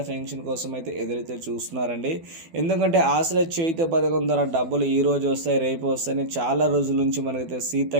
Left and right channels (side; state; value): left; late; 12 ms